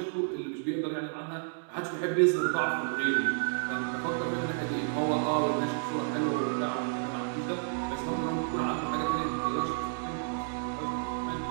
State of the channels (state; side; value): silent; left; digital silence